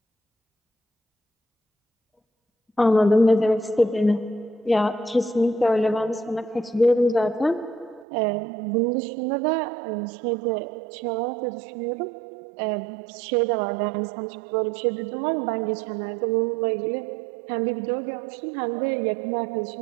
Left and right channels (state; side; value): drops out; left; at 8.1 s